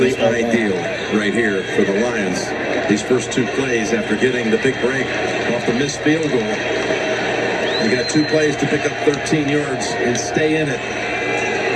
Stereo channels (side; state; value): both; identical; correlation 1.00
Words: ideal right here for the Lions. These first 2 plays after getting the big break off the missed field goal. You got 2 plays to pick up 13 yards and stay in it.